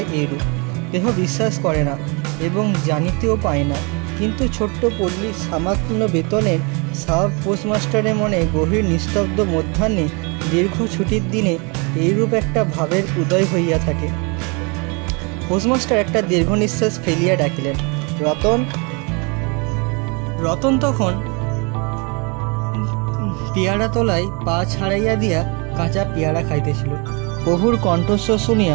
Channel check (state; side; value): quieter; left; 31.3 dB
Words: এরূপ। দেহ বিশ্বাস করে না এবং জানিতেও পায় না, কিন্তু ছোট্ট পল্লীর সামান্য বেতনের সাব পোস্টমাস্টারের মনে গভীর নিস্তব্ধ মধ্যাহ্নে দীর্ঘ ছুটির দিনে এইরূপ একটা ভাবের উদয় হইয়া থাকে। পোস্টমাস্টার একটা দীর্ঘ নিঃশ্বাস ফেলিয়া ডাকিলেন, রতন। রতন তখন পেয়ারা তলায় পা ছাড়াইয়া দিয়া কাঁচা পেয়ারা খাইতেছিল। প্রভুর কণ্ঠস্বর শুনিয়া